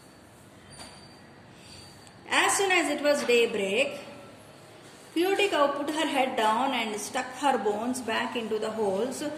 As soon as it was daybreak, Cutie Cow put her head down and stuck her bones back into the holes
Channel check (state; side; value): identical; both; correlation 1.00